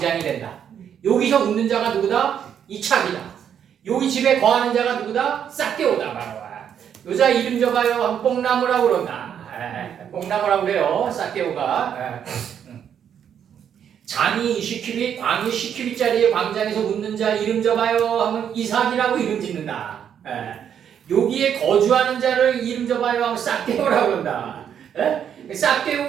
된다. 여기서 웃는 자가 누구다? 이착이다. 여기 집에 거하는 자가 누구다? 싹개오다. 바로 여자 이름 줘봐요. 뽕나무라고 그런다. 뽕나무라고 그래요. 싹개오가. 장이 시키비 광이 시키비짜리의 광장에서 웃는 자 이름 줘봐요 하면 이삭이라고 이름 짓는다. 여기에 거주하는 자를 이름 줘봐요 하면 싹개오라고 그런다.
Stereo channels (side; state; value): left; quieter; 8.7 dB